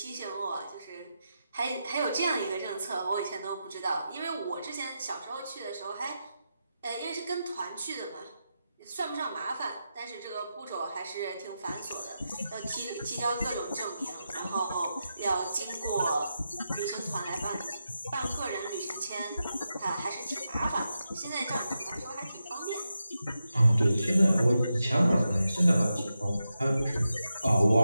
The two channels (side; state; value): both; inverted; correlation -0.88